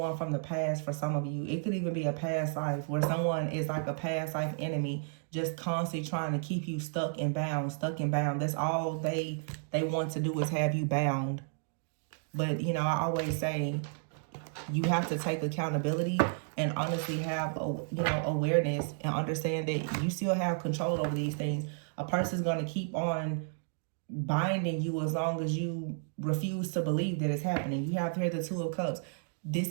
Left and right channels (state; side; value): silent; left; digital silence